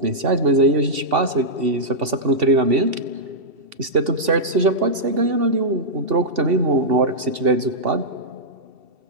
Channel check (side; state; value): left; late; 2.7 ms